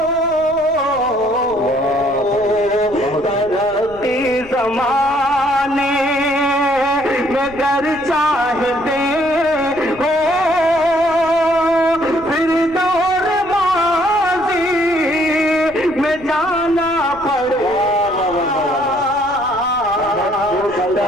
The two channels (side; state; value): left; noise; rumble, 21 dB below the sound